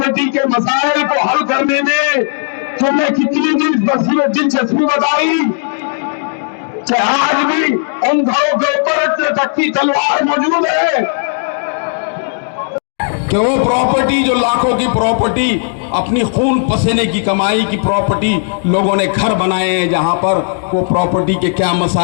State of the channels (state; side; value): silent; right; digital silence